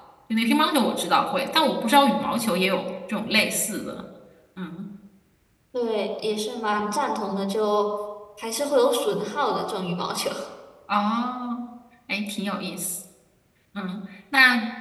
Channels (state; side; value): identical; both; correlation 1.00